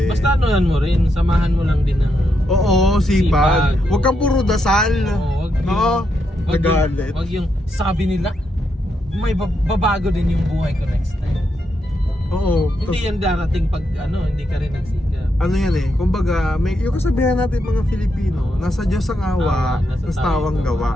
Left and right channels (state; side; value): normal; both; correlation 0.81